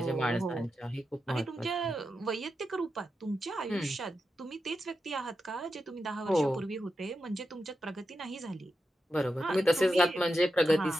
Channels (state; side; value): normal; both; correlation 0.89